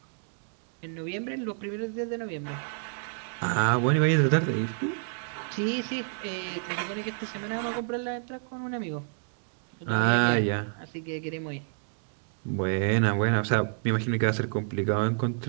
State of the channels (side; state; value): left; silent; 58 dB below the other